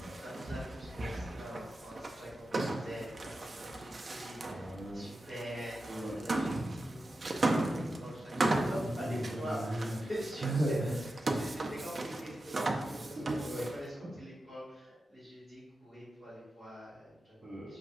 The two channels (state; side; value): normal; both; correlation 0.91